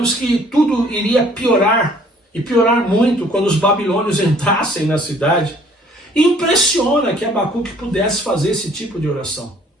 que tudo iria piorar, e piorar muito quando os babilônios entrassem na cidade, impressiona que Abacuque pudesse fazer esse tipo de oração.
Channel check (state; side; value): normal; both; correlation 0.57